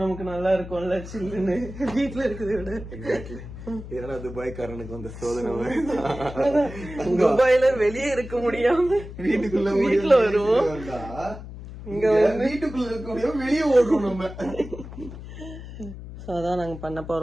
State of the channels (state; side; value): noise; left; hum, 12 dB below the sound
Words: நமக்கு நல்லா இருக்கும்ல, சில்லுன்னு. வீட்டுல இருக்கிறத விட. இதனால துபாய்க்காரனுக்கு வந்த சோதனை. துபாயில வெளியே இருக்க முடியாம வீட்டுல வருவோம். இங்க வீட்டுக்குள்ள இருக்க முடியாம வெளியே ஓடுறோம் நம்ம. அதான் நாங்க பண்ண